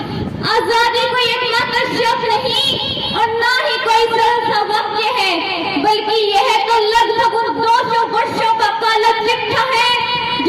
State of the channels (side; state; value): both; identical; correlation 1.00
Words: कोई एकमात्र शब्द नहीं और ना ही कोई सरल सा वाक्य है, बल्कि यह तो लगभग 200 वर्षों का काला चिट्ठा है